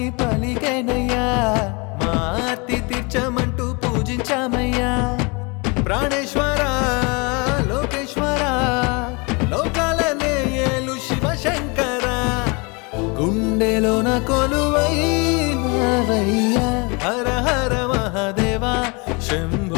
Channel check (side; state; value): right; quieter; 29.6 dB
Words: పలికేనయ్యా మా ఆర్తి తీర్చమంటూ పూజించామయ్యా ప్రాణేశ్వర లోకేశ్వర లోకాలనే ఏలు శివశంకర గుండెలోన కొలువైనావయ్యా హర హర మహాదేవా